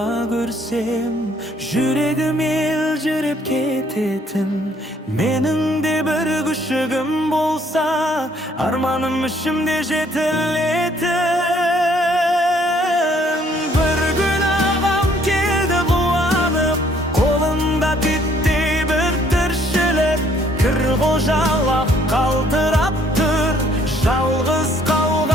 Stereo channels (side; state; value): both; normal; correlation 0.63